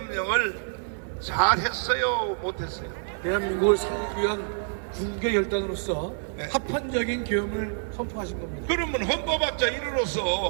잘했어요, 못했어요? 대한민국을 살리기 위한 군계 결단으로서 합헌적인 계엄을 선포하신 겁니다. 그러면 헌법학자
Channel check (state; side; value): silent; left; digital silence